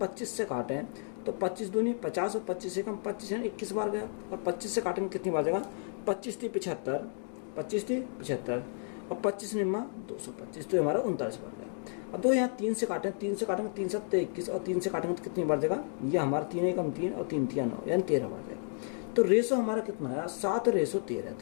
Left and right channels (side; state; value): right; silent; 56 dB below the other